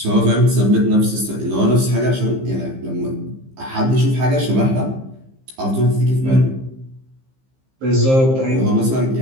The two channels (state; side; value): late; left; 15 ms